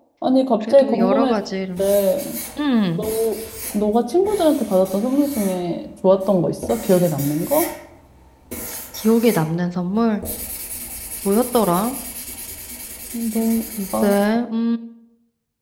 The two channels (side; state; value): both; identical; correlation 1.00